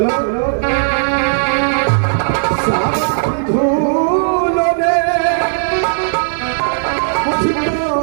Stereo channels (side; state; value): left; silent; digital silence